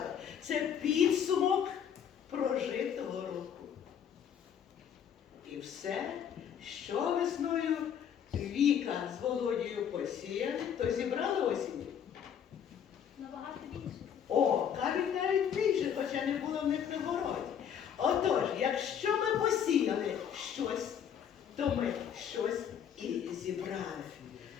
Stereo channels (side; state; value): right; quieter; 8.5 dB